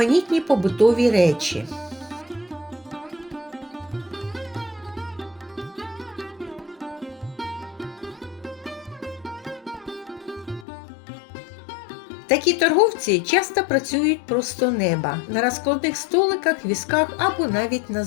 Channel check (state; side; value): drops out; right; at 10.7 s